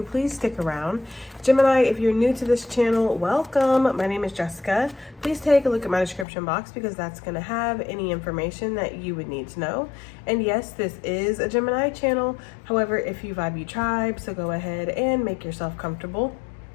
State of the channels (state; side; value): drops out; right; at 6.2 s